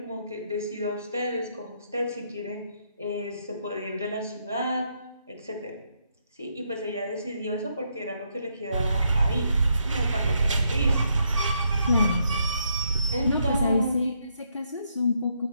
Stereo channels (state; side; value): inverted; both; correlation -0.76